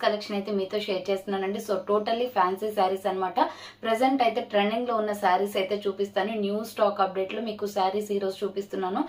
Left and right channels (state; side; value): identical; both; correlation 1.00